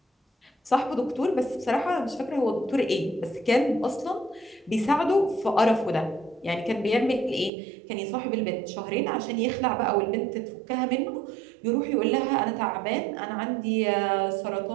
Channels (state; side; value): drops out; left; at 7.5 s